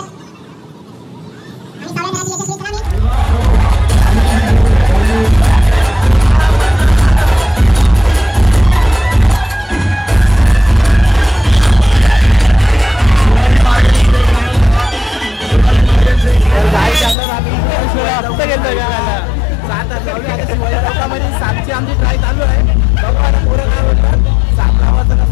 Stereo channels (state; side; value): drops out; right; at 17.2 s